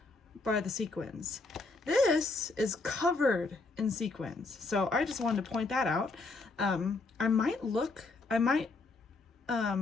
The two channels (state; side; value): quieter; right; 3.6 dB